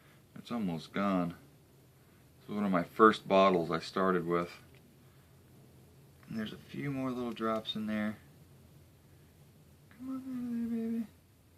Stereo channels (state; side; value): identical; both; correlation 1.00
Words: It's almost gone. This was one of my first bottles I started with. And there's a few more little drops in there. Come on, baby.